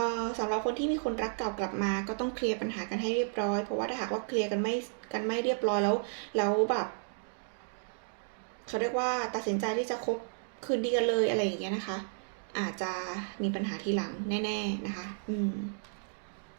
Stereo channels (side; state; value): left; silent; digital silence